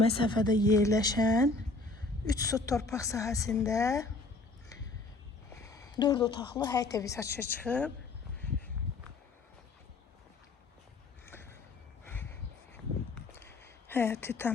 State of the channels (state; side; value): quieter; right; 3.4 dB